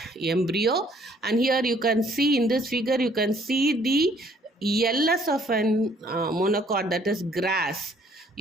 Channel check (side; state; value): both; normal; correlation 0.62